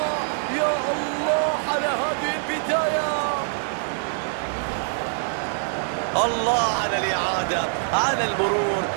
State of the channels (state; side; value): silent; left; 56 dB below the other